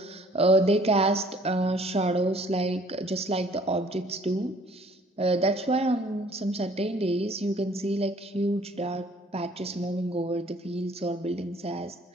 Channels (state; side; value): normal; both; correlation 0.57